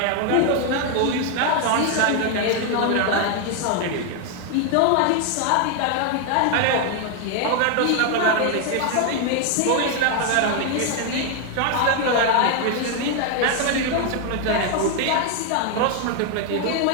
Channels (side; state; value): both; different; correlation 0.00